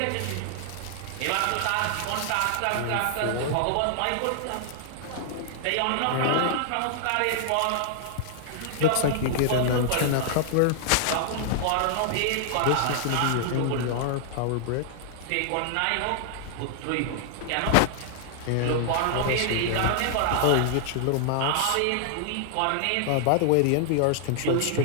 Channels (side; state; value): both; different; correlation -0.01